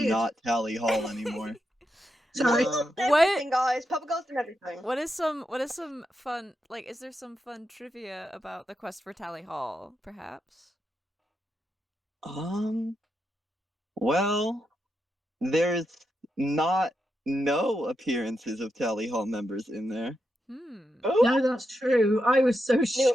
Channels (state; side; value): normal; both; correlation 0.85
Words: not Tally Hall anymore. Sorry. Yeah. Everything, guys. PurpleGirl's done everything. What is some fun, like, is there some fun trivia about the quest for Tally Hall, perhaps? Well, there's not no appearances of Tally Hall members in there. Ooh, No, that's true. I was so new